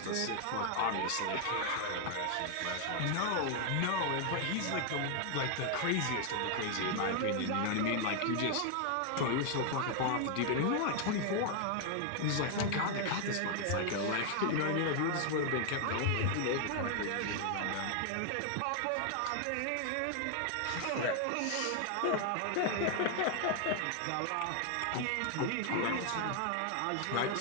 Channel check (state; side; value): different; both; correlation 0.00